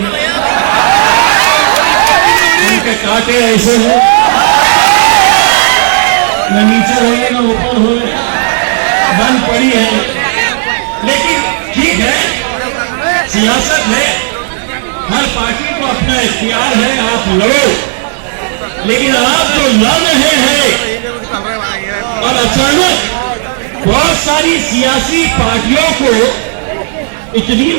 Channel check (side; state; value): left; silent; digital silence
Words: उनके कांटे ऐसे हैं न नीचे हो रहे न ऊपर हो रहे, बंद पड़ी है। लेकिन ठीक है, सियासत है, हर पार्टी को अपना इख्तियार है, आप लड़ो। लेकिन आप जो लड़ रहे हैं और अचानक बहुत सारी सियासी पार्टियों को इतनी